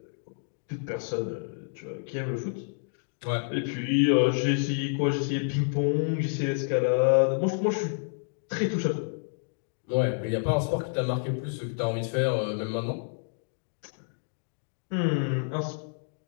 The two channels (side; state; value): right; silent; digital silence